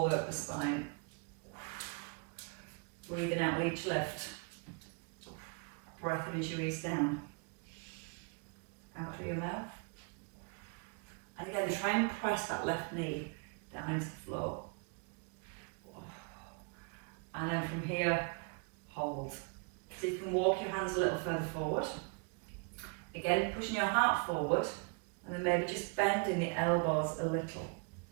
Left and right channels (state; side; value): quieter; left; 34.3 dB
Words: over the spine. Breathing out with each lift. Breath in as you ease down. Out through your mouth. And again, try and press that left knee down into the floor. And then from here, hold. So you can walk your hands a little further forward. Again, pushing your heart forward, and then maybe just bending the elbows a little.